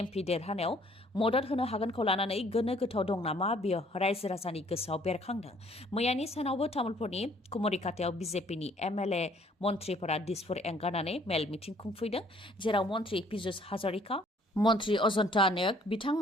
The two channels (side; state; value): both; normal; correlation 0.60